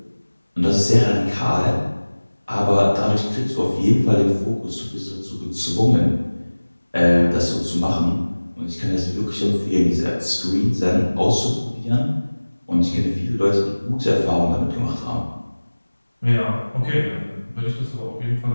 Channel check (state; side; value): inverted; both; correlation -1.00